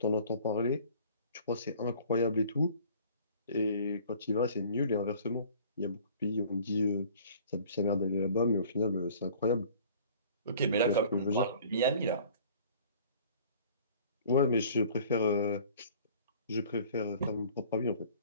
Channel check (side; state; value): both; inverted; correlation -0.50